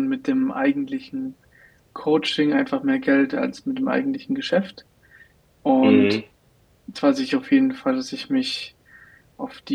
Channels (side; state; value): both; identical; correlation 1.00